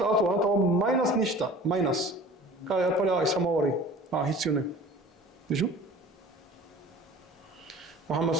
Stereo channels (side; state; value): both; normal; correlation 0.43